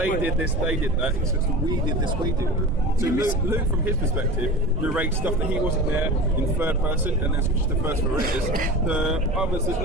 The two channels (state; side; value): noise; right; rumble, 9 dB below the sound